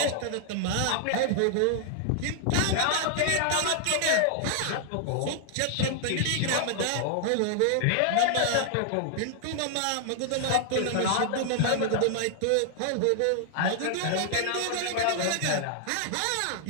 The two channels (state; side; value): different; both; correlation 0.00